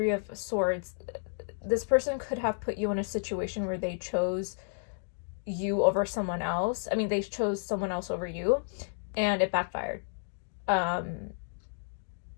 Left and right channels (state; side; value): silent; right; digital silence